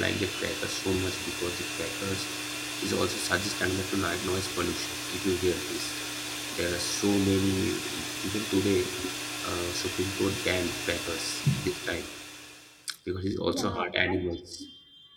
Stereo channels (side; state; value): both; identical; correlation 1.00